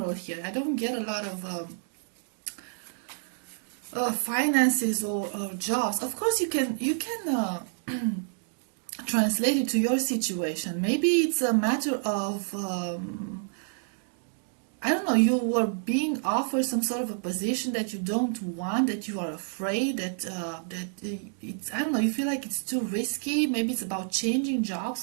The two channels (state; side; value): silent; left; digital silence